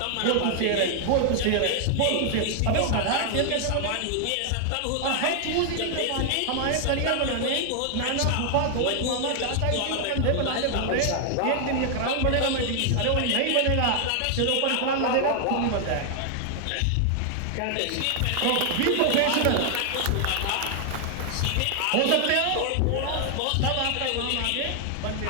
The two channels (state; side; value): different; both; correlation 0.00